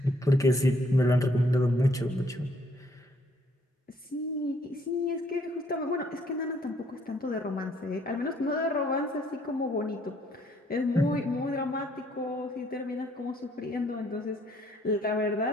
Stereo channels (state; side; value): normal; both; correlation 0.66